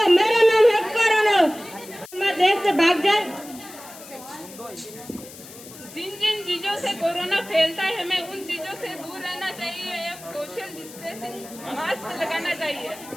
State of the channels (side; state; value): left; noise; hiss, 17 dB below the sound